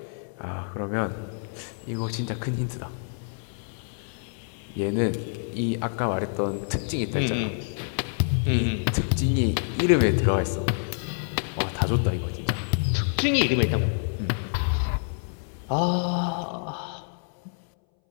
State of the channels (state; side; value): silent; right; 60 dB below the other